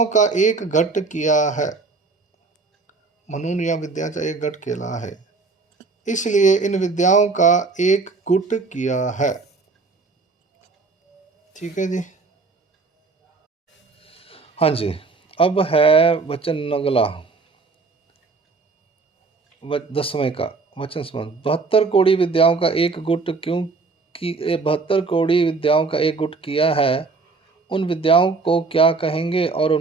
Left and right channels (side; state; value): left; quieter; 4.2 dB